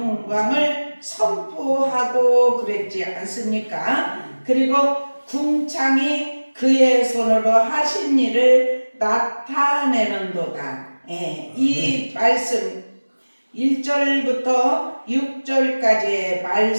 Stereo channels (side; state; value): both; inverted; correlation -1.00